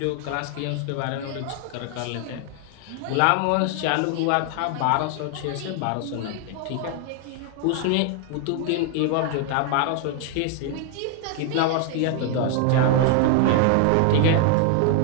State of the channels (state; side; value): different; both; correlation 0.01